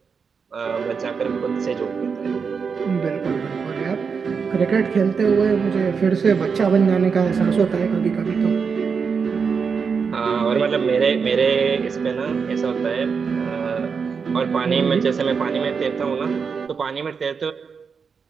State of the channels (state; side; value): quieter; left; 5.8 dB